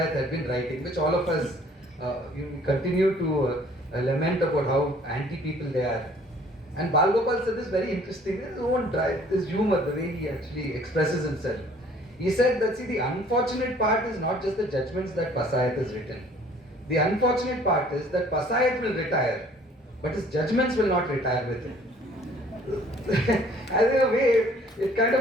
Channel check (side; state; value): both; normal; correlation 0.55